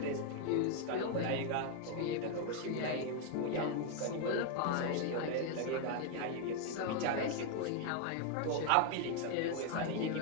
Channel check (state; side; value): different; both; correlation 0.01